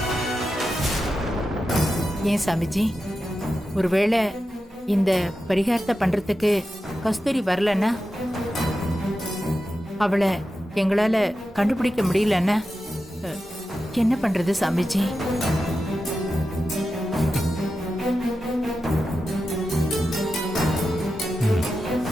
ஏன் சாமிஜி, ஒருவேளை இந்த பரிகாரத்தை பண்றதுக்கு கஸ்தூரி வரலன்னா, அவளை எங்களால கண்டுபிடிக்க முடியலன்னா என்ன பண்றது சாமிஜி?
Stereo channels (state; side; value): normal; both; correlation 0.91